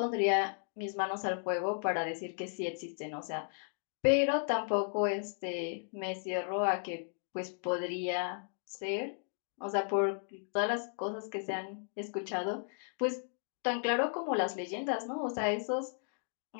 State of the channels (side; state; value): right; silent; digital silence